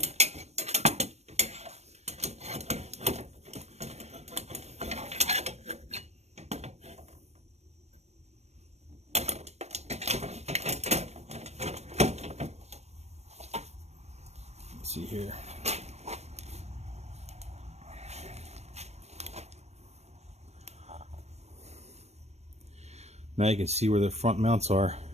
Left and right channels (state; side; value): late; left; 0.31 ms